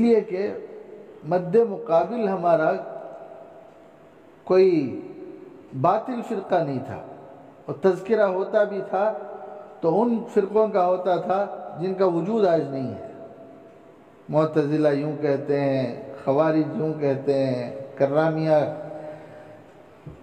کہ مد مقابل ہمارا کوئی باطل فرقہ نہیں تھا، اور تذکرہ ہوتا بھی تھا تو ان فرقوں کا ہوتا تھا جن کا وجود آج نہیں ہے۔ معتزلہ یوں کہتے ہیں، خوارج یوں کہتے ہیں، کرامیہ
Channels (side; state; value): both; identical; correlation 1.00